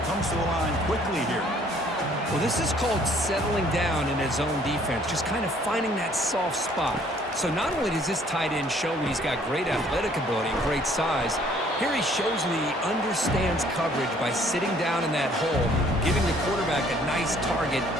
comes to the line quickly here. Well, this is called settling down in his own defense. Just kind of finding that soft spot. So not only does this tight end show that he's got great athletic ability and great size, here he shows that he understands coverage by sitting down in that hole, giving the quarterback a nice target,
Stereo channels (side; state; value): both; normal; correlation 0.60